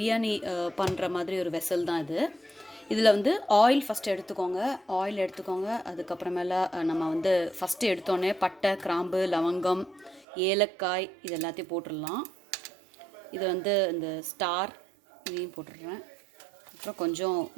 பண்ணுற மாதிரி ஒரு வெசல் தான் இது. இதில் வந்து ஆயில் ஃபஸ்ட்டு எடுத்துக்கோங்க. அதுக்கப்புறமேல நம்ம வந்து ஃபஸ்ட்டு எடுத்தோடனே பட்டை, கிராம்பு, லவங்கம், ஏலக்காய் இது எல்லாத்தையும் போட்டுடலாம். இது வந்து இந்த ஸ்டார் இதையும் போட்டுடுறேன். அப்புறம் கொஞ்சம்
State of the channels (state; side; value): drops out; left; at 10.2 s